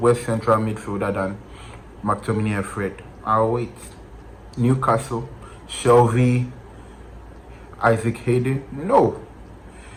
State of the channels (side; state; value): both; identical; correlation 1.00